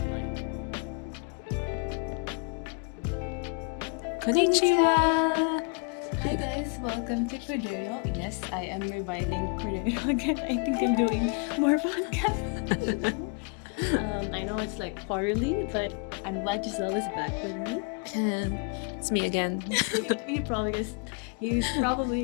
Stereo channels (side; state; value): right; quieter; 34.8 dB